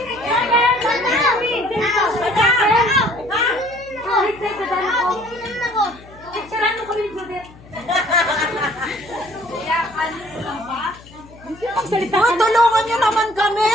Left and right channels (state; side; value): noise; left; hum, 22 dB below the sound